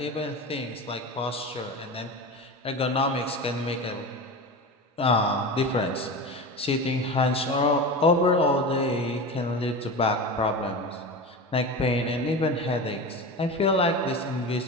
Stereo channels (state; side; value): normal; both; correlation 0.27